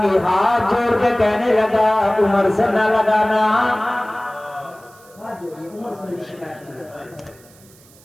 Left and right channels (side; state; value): right; noise; hiss, 26 dB below the sound